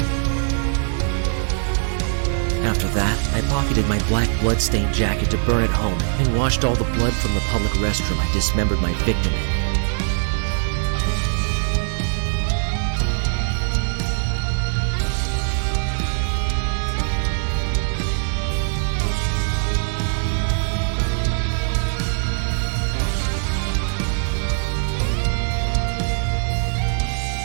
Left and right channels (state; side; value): silent; left; 65 dB below the other